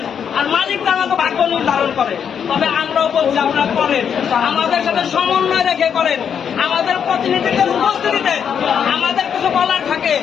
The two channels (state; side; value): quieter; right; 7.7 dB